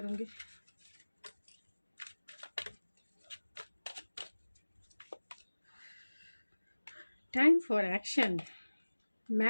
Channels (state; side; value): inverted; both; correlation -1.00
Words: टाइम फॉर एक्शन,